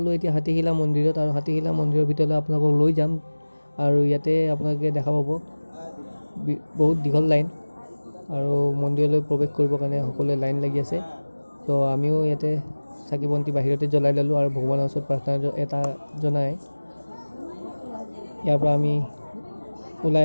এতিয়া হাতীশিলা মন্দিৰত, আৰু হাতীশিলা মন্দিৰৰ ভিতৰলৈ আপোনালোকক লৈ যাম। আৰু ইয়াতে আপোনালোকে দেখা পাব বহুত দীঘল লাইন, আৰু মন্দিৰলৈ প্ৰৱেশ কৰিবৰ কাৰণে সকলোৱে লাইন লাগি আছে। তো আমিও ইয়াতে চাকি বন্তি বাহিৰতে জ্বলাই ল'লোঁ আৰু ভগৱানৰ ওচৰত প্ৰাৰ্থনা এটা জনাই ইয়াৰ পৰা আমি ওলাই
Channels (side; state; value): both; inverted; correlation -1.00